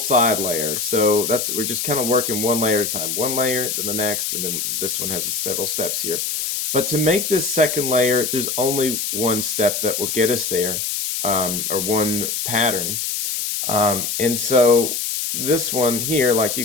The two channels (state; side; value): noise; left; hiss, 2 dB below the sound